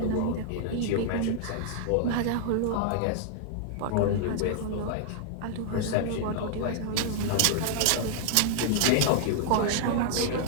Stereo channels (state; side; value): different; both; correlation -0.01